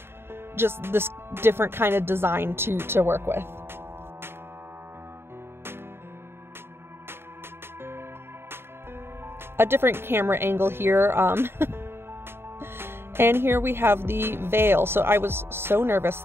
just this different kind of design to work with. A different camera angle here. And here we have the veil. So I was so nervous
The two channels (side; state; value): left; late; 0.11 ms